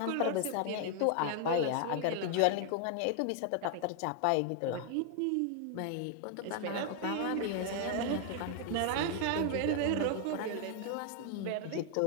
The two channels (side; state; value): both; different; correlation 0.00